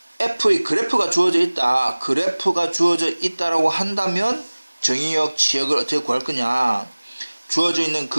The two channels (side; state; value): both; inverted; correlation -1.00